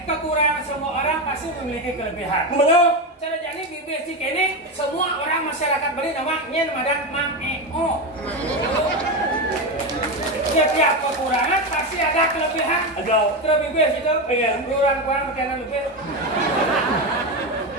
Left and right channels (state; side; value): normal; both; correlation 0.15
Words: kekurangan semua orang pasti memiliki kelebihan. Benar. Cara jadi basic ini semua orang masyarakat beri nama nyen madan mang eo. Setiap kekurangan pasti ada kelebihan. Ada. Terlebih basic itu Pengen. kurang makanan lebih.